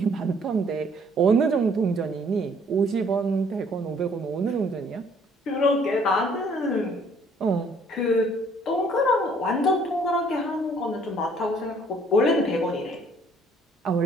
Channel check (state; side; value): normal; both; correlation 0.60